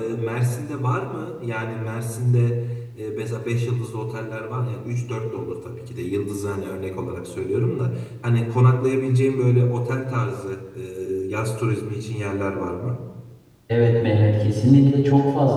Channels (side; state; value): both; identical; correlation 1.00